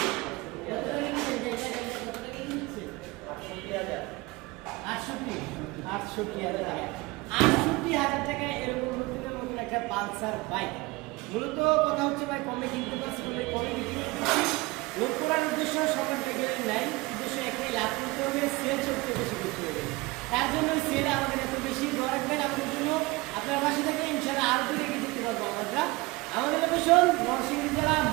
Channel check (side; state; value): left; quieter; 22.7 dB